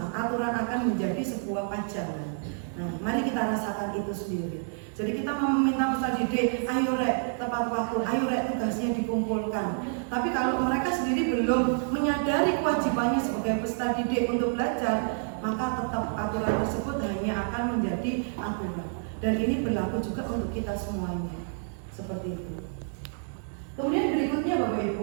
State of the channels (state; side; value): silent; left; digital silence